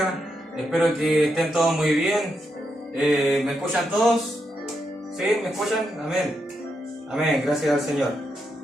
Espero que estén todos muy bien. ¿Me escuchan todos? ¿Sí? ¿Me escuchan? Amén. Amén. Gracias al Señor.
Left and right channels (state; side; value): normal; both; correlation 0.82